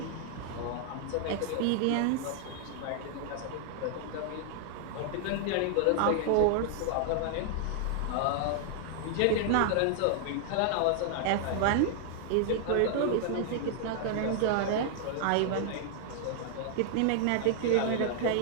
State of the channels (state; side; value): different; both; correlation 0.00